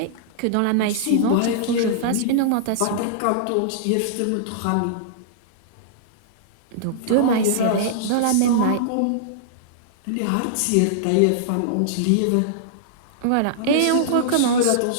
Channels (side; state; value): both; different; correlation -0.02